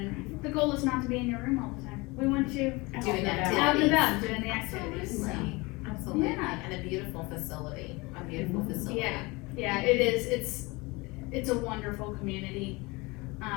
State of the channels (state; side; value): quieter; right; 24.6 dB